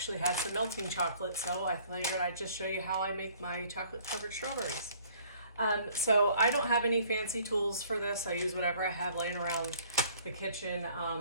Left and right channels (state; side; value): inverted; both; correlation -0.57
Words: had some melting chocolate, so I figured I'd just show you how I make my chocolate covered strawberries. So I don't have any fancy tools for this. I use whatever I have laying around the kitchen.